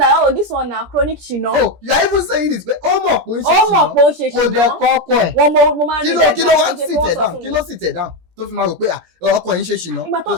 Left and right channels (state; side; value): late; left; 17 ms